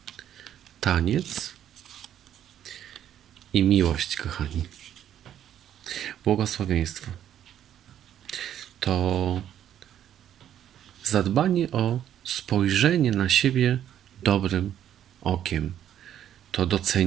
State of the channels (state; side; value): quieter; left; 10.6 dB